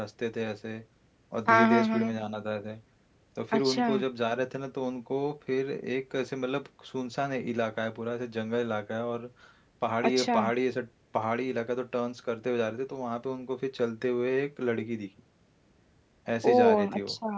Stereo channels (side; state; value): both; identical; correlation 1.00